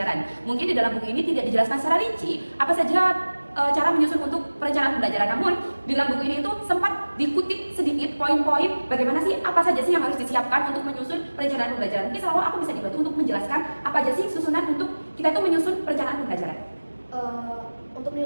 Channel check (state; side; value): inverted; both; correlation -1.00